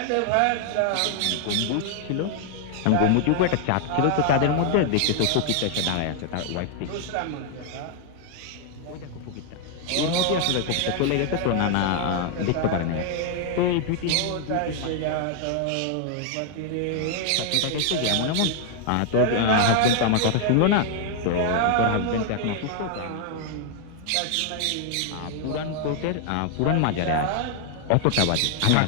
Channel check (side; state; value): both; different; correlation 0.00